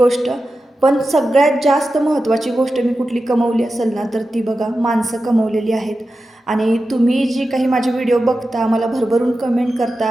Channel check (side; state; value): both; normal; correlation 0.92